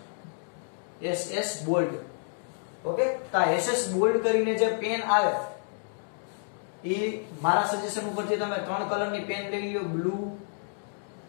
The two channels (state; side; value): silent; right; digital silence